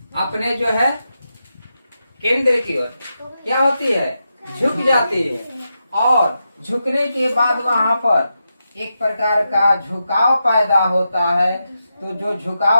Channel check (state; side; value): inverted; both; correlation -0.87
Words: अपने जो है केंद्र की ओर क्या होती है? झुक जाती है। और झुकने के बाद वहां पर एक प्रकार का झुकाव पैदा होता है। तो जो